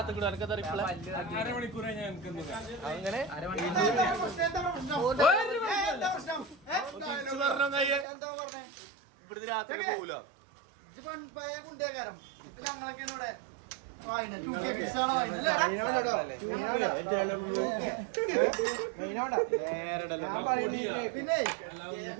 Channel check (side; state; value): left; drops out; at 8.1 s